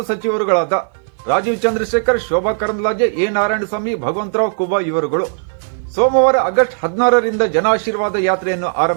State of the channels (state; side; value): silent; left; 56 dB below the other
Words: ಸಚಿವರುಗಳಾದ ರಾಜೀವ್ ಚಂದ್ರಶೇಖರ್, ಶೋಭಾ ಕರಂದ್ಲಾಜೆ, ಎ ನಾರಾಯಣಸ್ವಾಮಿ, ಭಗವಂತರಾವ್ ಕುಬಾ ಇವರುಗಳು ಸೋಮವಾರ ಆಗಸ್ಟ್ 16ರಿಂದ ಜನಾಶೀರ್ವಾದ ಯಾತ್ರೆಯನ್ನು